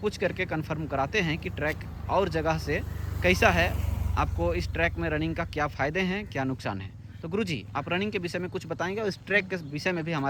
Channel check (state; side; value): identical; both; correlation 1.00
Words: करके कंफर्म कराते हैं कि ट्रैक और जगह से कैसा है, आपको इस ट्रैक में रनिंग का क्या फ़ायदे हैं, क्या नुकसान है। तो गुरुजी आप रनिंग के विषय में कुछ बताएंगे और इस ट्रैक के विषय में भी